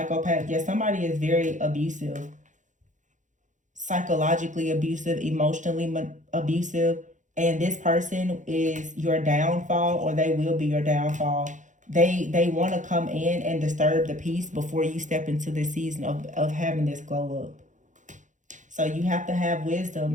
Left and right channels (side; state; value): left; late; 0.36 ms